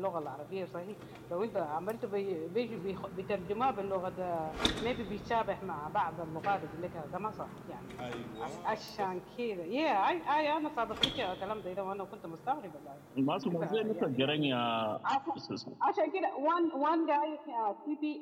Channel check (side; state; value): both; identical; correlation 1.00